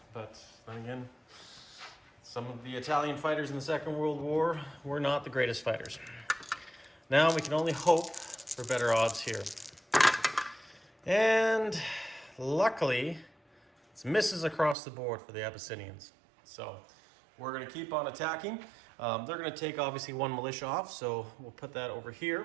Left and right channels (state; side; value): drops out; left; at 14.8 s